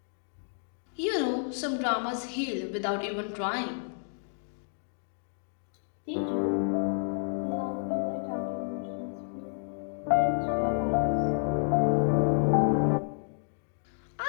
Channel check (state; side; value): silent; right; digital silence